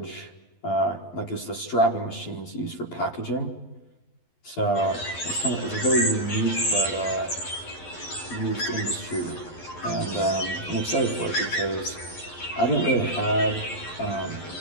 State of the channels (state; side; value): late; right; 12 ms